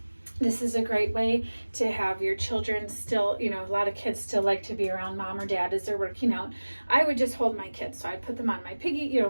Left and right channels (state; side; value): inverted; both; correlation -1.00